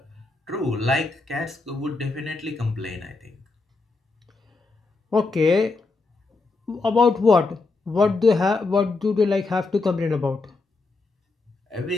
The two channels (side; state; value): right; quieter; 3.7 dB